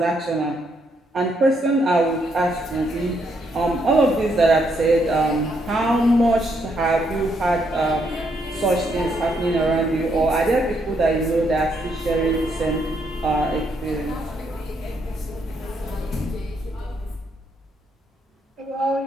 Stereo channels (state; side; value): normal; both; correlation 0.75